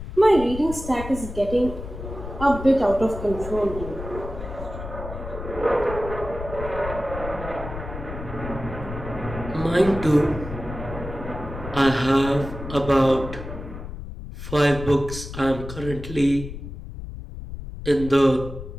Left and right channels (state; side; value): noise; left; rumble, 10 dB below the sound